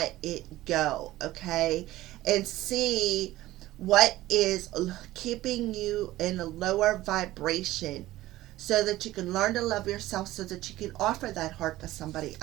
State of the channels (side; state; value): left; quieter; 16.3 dB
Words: it go, okay? And see what is keeping you in a lower vibration, so that you can learn to love yourself, so that you can offer that heart to somebody